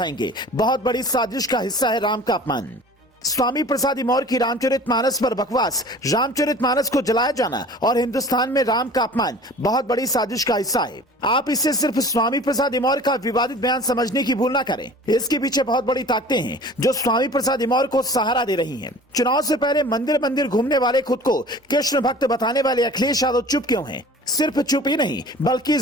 बहुत बड़ी साजिश का हिस्सा है राम का अपमान। स्वामी प्रसाद मौर्य की रामचरितमानस पर बकवास, रामचरितमानस को जलाया जाना और हिंदुस्तान में राम का अपमान बहुत बड़ी साजिश का हिस्सा है। आप इसे सिर्फ स्वामी प्रसाद मौर्य का विवादित बयान समझने की भूल ना करें। इसके पीछे बहुत बड़ी ताकतें हैं जो स्वामी प्रसाद मौर्य को सहारा दे रही हैं। चुनाव से पहले मंदिर मंदिर घूमने वाले, खुद को कृष्ण भक्त बताने वाले अखिलेश यादव चुप क्यों हैं? सिर्फ चुप ही नहीं, बल्कि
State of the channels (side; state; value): both; normal; correlation 0.44